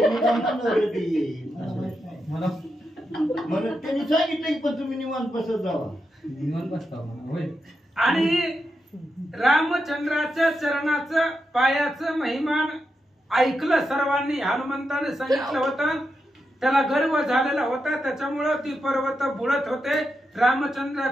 मला त्यांनी सांगितलं की पण तुम्ही निवांत बसत जावा. निवांत बसता म्हणा होय. आणि रामचंद्राच्या चरणाचं पायाचं महिमान ऐकलं सर्वांनी. हनुमंताने सांगितलं होतं, त्याला गर्व झालेला होता, त्याच्यामुळं ती पर्वत बुडत होते.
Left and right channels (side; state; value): both; normal; correlation 0.86